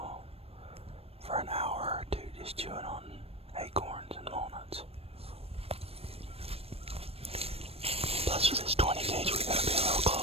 for an hour or two just chewing on acorns and walnuts. Plus with this 20 gauge, we gotta be a little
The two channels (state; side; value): late; left; 0.28 ms